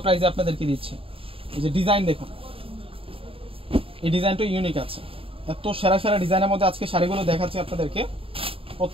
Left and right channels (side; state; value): left; late; 0.27 ms